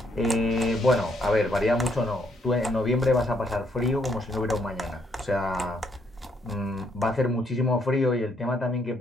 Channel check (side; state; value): both; normal; correlation 0.72